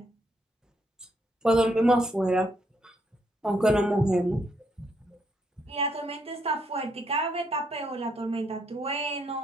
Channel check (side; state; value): both; normal; correlation 0.75